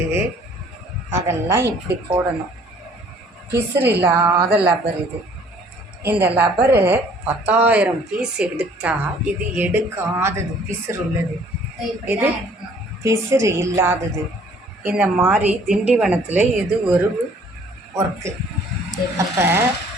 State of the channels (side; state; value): both; normal; correlation 0.57